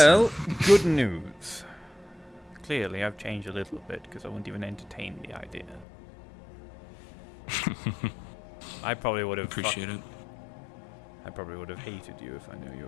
good news. Clearly, I've changed a little bit because I wouldn't even entertain the idea. I probably would have appreciate it. I probably would have hated you if I knew you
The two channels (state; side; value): drops out; right; at 5.9 s